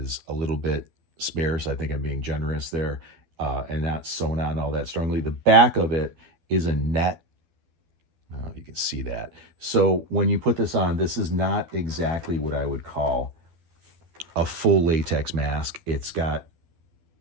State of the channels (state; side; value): late; left; 12 ms